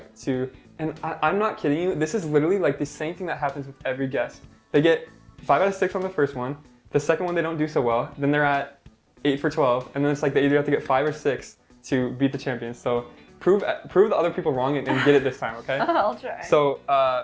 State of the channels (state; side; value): identical; both; correlation 1.00